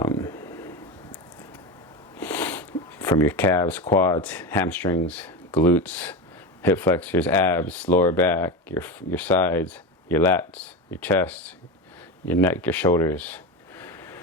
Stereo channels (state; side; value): normal; both; correlation 0.20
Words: From your calves, quads, hamstrings, glutes, hip flexors, abs, lower back, your sides, your lats, your chest, your neck, your shoulders.